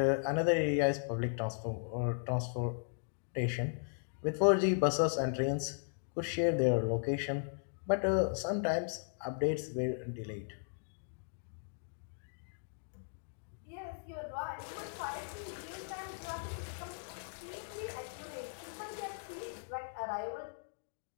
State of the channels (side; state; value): right; silent; digital silence